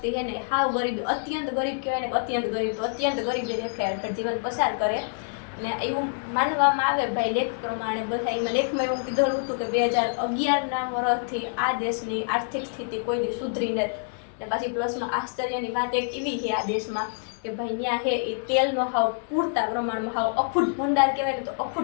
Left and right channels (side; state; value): right; silent; digital silence